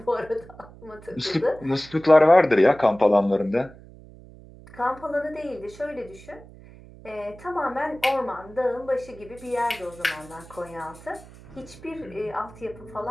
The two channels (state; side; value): noise; right; hum, 20 dB below the sound